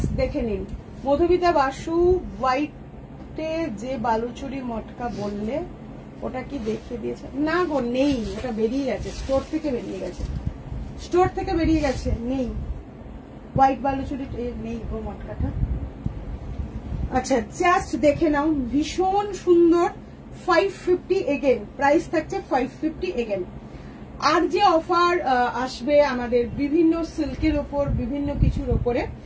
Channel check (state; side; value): identical; both; correlation 1.00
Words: দেখে নিন। মধুমিতা বাসু হোয়াইটে যে বালুচুরি মটকা বললে ওটা কি দেখিয়ে দিয়েছে? না গো, নেই, ওটা বেরিয়ে গেছে, স্টোর থেকে বেরিয়ে গেছে, স্টোর থেকে বেরিয়ে গেছে, নেই হোয়াইট বালুচুরি, নেই গো মটকাটা। আচ্ছা, জাস্ট দেখে নাও, ভীষণ সুন্দর। 550 এগেন, প্রাইস থাকছে 550 এগেন। আর যে অফার আসবে আমাদের বিভিন্ন সিল্কের ওপর, বিভিন্ন কিছুর ওপরে